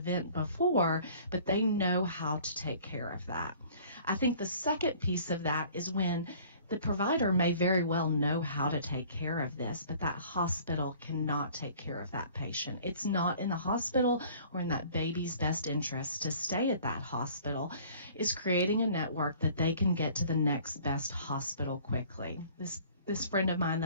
before, but they know how to take care of that. I think the second piece of that is when the provider may very well know how to take care of this, but that hospital cannot take care of that patient. It's not in the hospital or in that baby's best interest to stay at that hospital. Is creating a network that they can get to the next best hospital quickly. This friend of mine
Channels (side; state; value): both; inverted; correlation -0.52